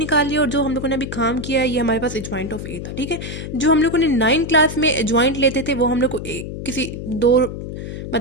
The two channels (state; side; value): noise; left; hum, 8 dB below the sound